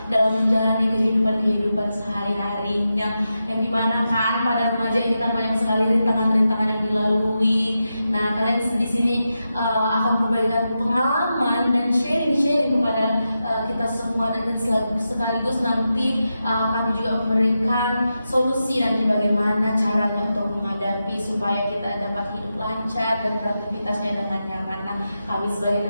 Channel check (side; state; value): both; inverted; correlation -0.89